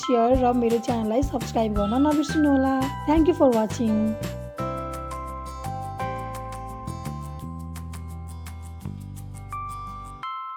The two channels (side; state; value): both; identical; correlation 1.00